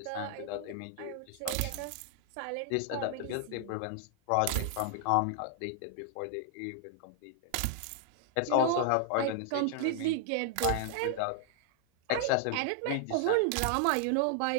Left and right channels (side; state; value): both; different; correlation 0.00